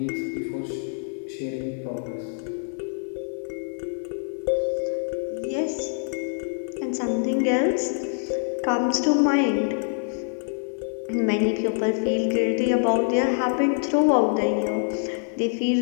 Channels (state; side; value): silent; right; 61 dB below the other